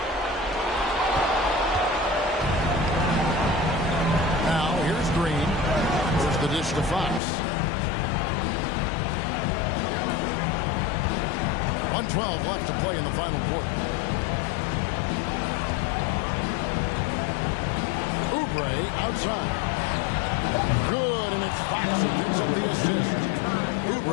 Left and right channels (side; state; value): right; drops out; at 7.2 s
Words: Now here's Green. Here's the dish to Fox. 1:12 left to play in the final quarter. Oubre outside. Good, and it's Fox who picks up the assist.